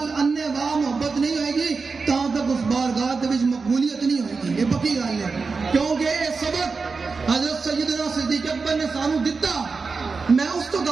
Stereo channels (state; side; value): quieter; left; 4.6 dB